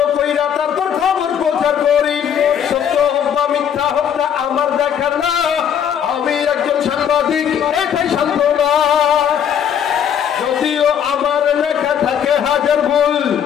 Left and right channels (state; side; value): quieter; right; 8.7 dB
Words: কইরা তারপর খবর প্রচার করি। সত্য হোক বা মিথ্যা হোক না আমার দেখার না, আমি একজন সাংবাদিক, এটাই সান্ত্বনা। যদিও আমার লেখা থাকে হাজার ভুল,